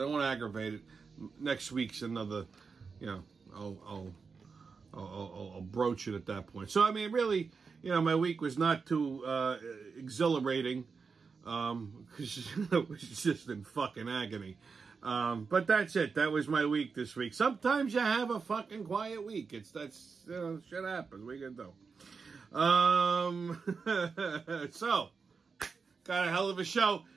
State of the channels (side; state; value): left; quieter; 5.1 dB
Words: I don't want to aggravate it. Next week's another, you know, I'll broach it at that point. So, I mean, really, you know, my week was not too exhilarating. Because it was just in fucking agony. But that's it. That was my week this week. Sometimes you have a fucking quiet week. You know, shit happens. What are you gonna do? So, got a hell of a show.